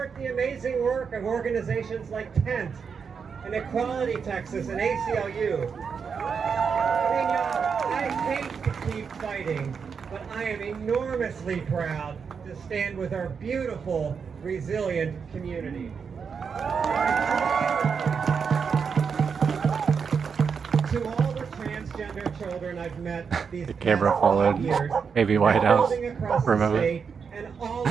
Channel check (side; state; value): left; quieter; 6.1 dB